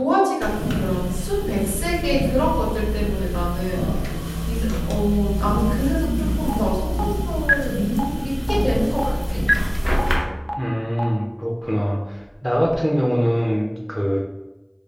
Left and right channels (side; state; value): both; identical; correlation 1.00